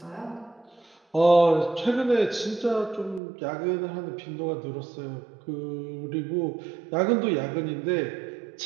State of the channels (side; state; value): left; drops out; at 3.2 s